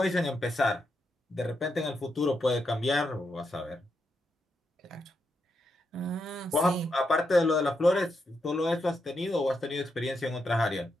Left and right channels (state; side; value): normal; both; correlation 0.83